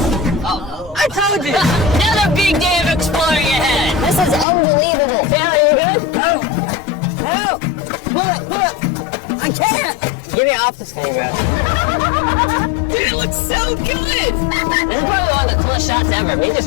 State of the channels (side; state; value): right; drops out; at 4.5 s